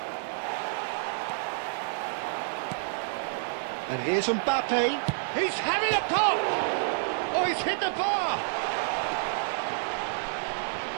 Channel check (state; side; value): silent; left; digital silence